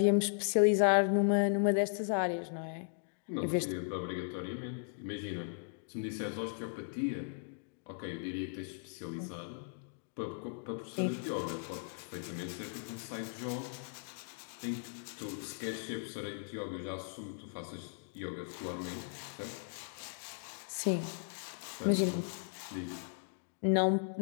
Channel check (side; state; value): right; silent; digital silence